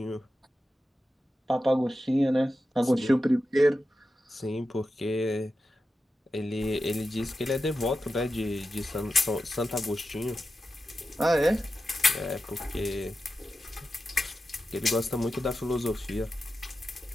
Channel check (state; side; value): normal; both; correlation 0.91